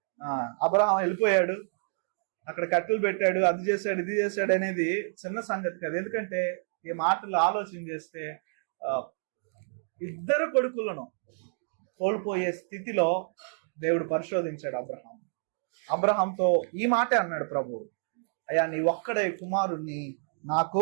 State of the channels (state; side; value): silent; left; digital silence